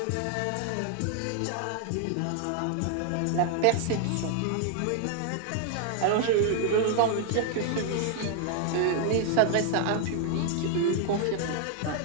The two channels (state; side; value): different; both; correlation 0.00